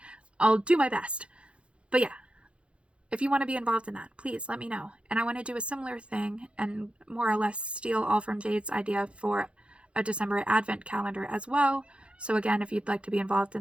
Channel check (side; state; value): left; late; 0.059 ms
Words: I'll do my best. But yeah, if you want to be involved in that, please let me know. And I want to do a similar thing and more or less steal all from Jade's idea for a December advent calendar as well. So again, if you'd like to be involved